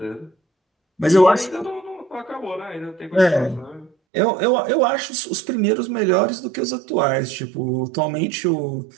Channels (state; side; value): drops out; left; at 3.9 s